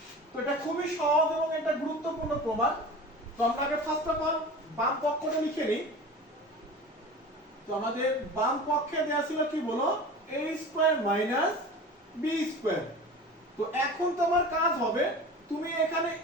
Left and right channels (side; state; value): both; normal; correlation 0.35